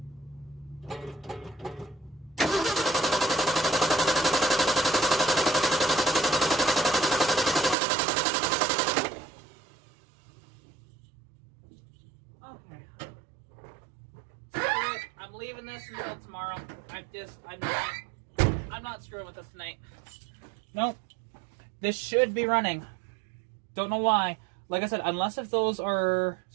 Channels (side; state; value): left; drops out; at 7.8 s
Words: Okay. I'm leaving this until tomorrow. I'm not screwing with this tonight. Nope. This should be running. Don't know why. Like I said, unless if those are